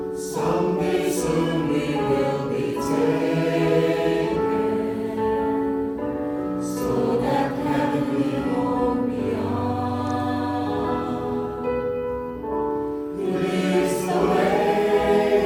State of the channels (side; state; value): both; identical; correlation 1.00